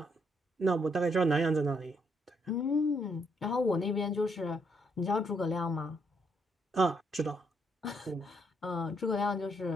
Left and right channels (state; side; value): normal; both; correlation 0.74